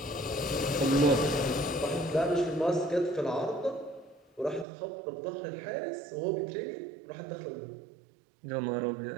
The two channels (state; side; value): drops out; left; at 4.7 s